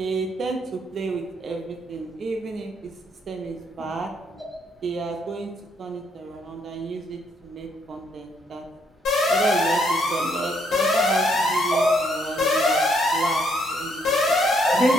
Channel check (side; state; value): both; normal; correlation 0.71